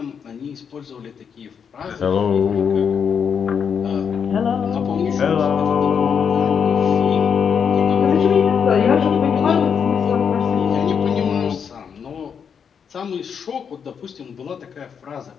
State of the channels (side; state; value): right; quieter; 7.0 dB